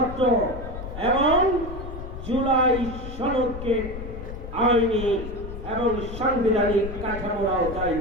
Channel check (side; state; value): left; noise; rumble, 9 dB below the sound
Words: এবং জুলাই সনদকে আইনি এবং সাংবিধানিক কাঠামোর আওতায়